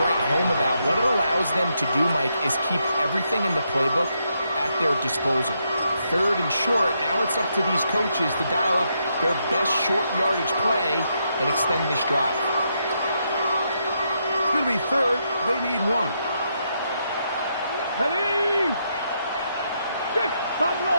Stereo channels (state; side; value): inverted; both; correlation -0.79